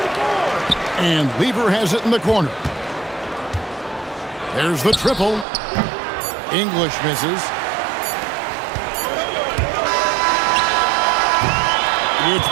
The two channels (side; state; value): left; drops out; at 5.5 s